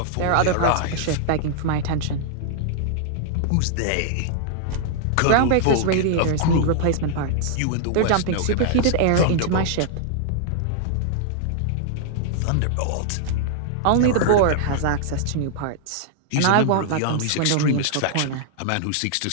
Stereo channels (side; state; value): both; different; correlation -0.01